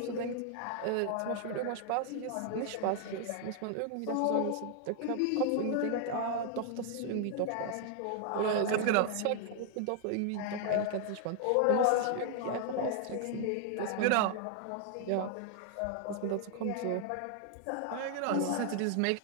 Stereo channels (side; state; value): both; different; correlation 0.00